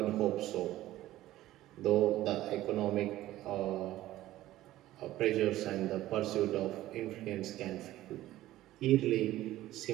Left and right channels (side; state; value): left; quieter; 15.1 dB